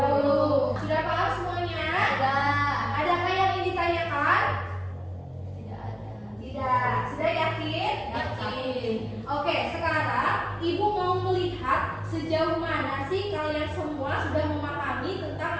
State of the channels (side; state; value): both; identical; correlation 1.00